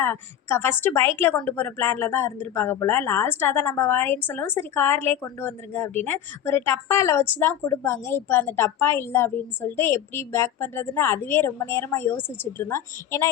ஃபஸ்ட்டு பைக்கில் கொண்டு போகிற பிளானில் தான் இருந்திருப்பாங்க போல். லாஸ்ட்டாக தான் நம்ம வரேன்னு சொல்லவும், சரி கார்லேயே கொண்டு வந்துருங்க அப்படின்னு ஒரு டப்பாவில் வச்சு தான் கொடுப்பாங்க. இப்போ அந்த டப்பா இல்லை அப்படின்னு சொல்லிட்டு எப்படி பேக் பண்ணுறதுன்னு அதுவே ரொம்ப நேரமாக யோசிச்சுட்டு இருந்தோம். ஏன்னா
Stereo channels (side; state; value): right; quieter; 10.7 dB